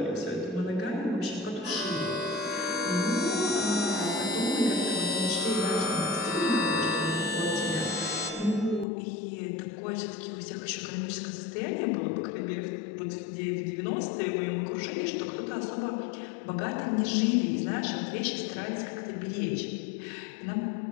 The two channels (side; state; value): right; drops out; at 8.8 s